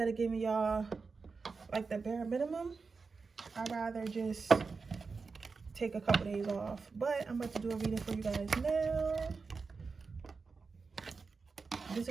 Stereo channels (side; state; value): left; quieter; 4.6 dB